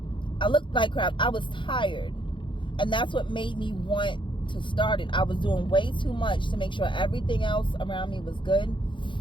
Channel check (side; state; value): right; late; 0.24 ms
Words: I looked like crap. I was tired. And that's what made me want to start it. I was doing way too much to make sure everything else around me was good.